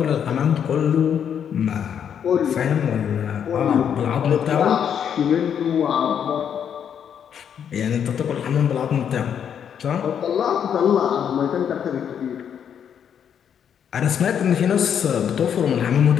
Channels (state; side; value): quieter; right; 8.4 dB